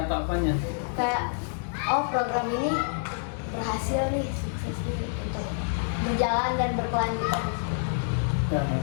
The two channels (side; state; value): right; silent; digital silence